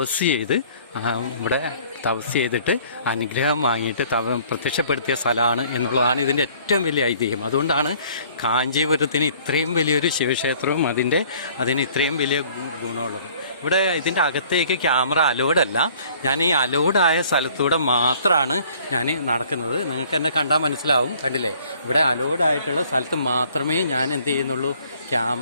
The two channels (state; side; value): inverted; both; correlation -0.55